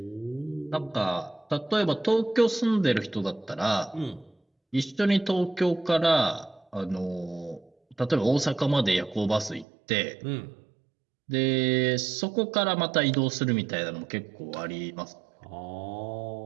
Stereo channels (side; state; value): left; drops out; at 9.7 s